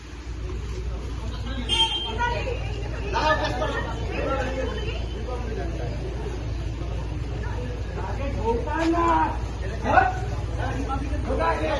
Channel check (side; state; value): both; identical; correlation 1.00